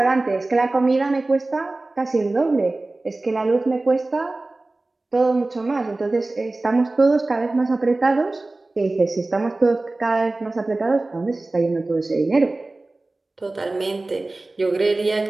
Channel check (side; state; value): left; quieter; 3.0 dB